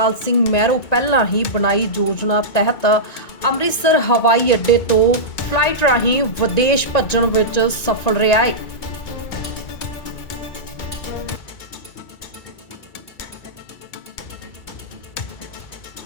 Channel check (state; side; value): late; right; 2.3 ms